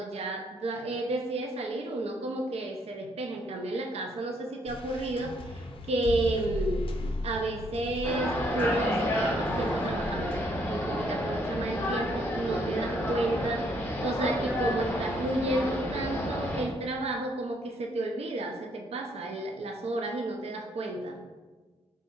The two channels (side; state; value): both; normal; correlation 0.69